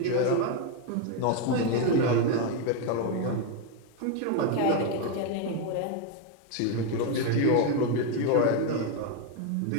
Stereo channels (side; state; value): both; different; correlation 0.02